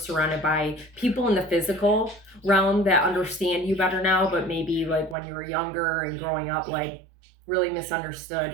by people in the physical realm that understand you better now, but maybe like when you were younger and growing up, like really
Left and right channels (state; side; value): drops out; left; at 5.2 s